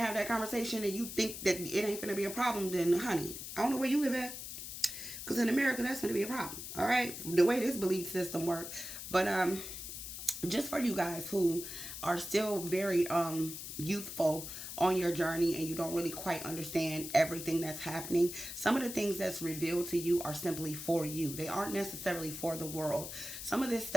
have that conversation and you think that it ain't going to be a problem, then honey, I don't know where you live at. Because in America, that's going to be a problem. All right. The way this belief system works. But just for you guys who are still very youthful on your journey and you don't really quite understand everything that's happening, some of the things that's revealed to you are simply for you. They aren't necessarily for the world. Some of this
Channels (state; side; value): noise; left; hiss, 8 dB below the sound